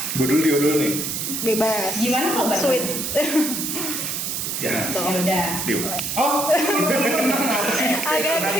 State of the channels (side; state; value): right; noise; hiss, 3 dB below the sound